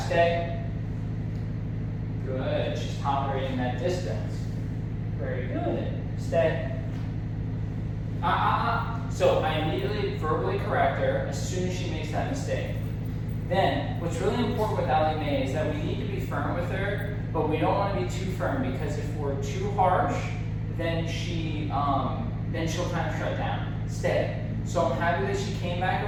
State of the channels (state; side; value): identical; both; correlation 1.00